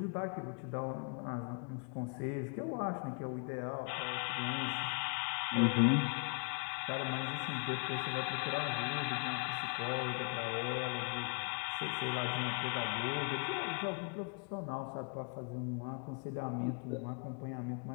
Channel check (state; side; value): quieter; right; 36.7 dB